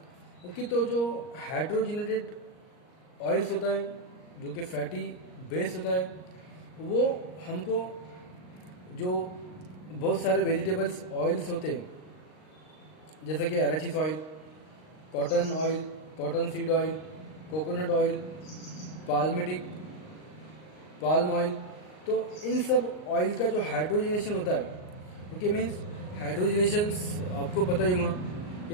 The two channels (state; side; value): late; right; 38 ms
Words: ओके, तो जो हाइड्रोजिनेटेड ऑयल्स होता है जो कि फैटी बेस होता है, वो हमको जो बहुत सारे वेजिटेबल्स ऑयल्स होते हैं जैसे कि arachis oil, cotton oil, cotton seed oil, coconut oil, palmitic, palm oil, तो इन सब ऑयल का जो हाइड्रोजनेशन होता है, ओके, मीन्स हाइड्रोजनेशन आपको पता ही होगा